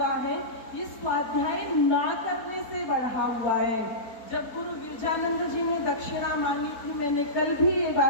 है ये स्वाध्याय ना करने से बढ़ा हुआ है। जब गुरु विरजानंद जी ने दक्षिणा मांगी थी, मैंने कल भी ये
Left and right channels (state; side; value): late; right; 4.1 ms